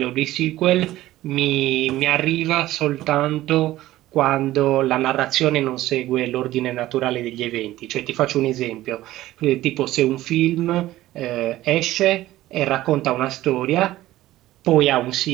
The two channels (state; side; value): quieter; left; 15.6 dB